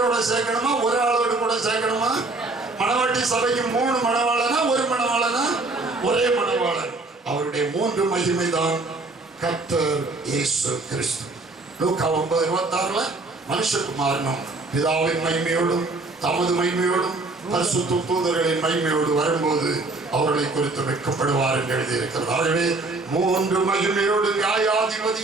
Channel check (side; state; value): left; quieter; 3.2 dB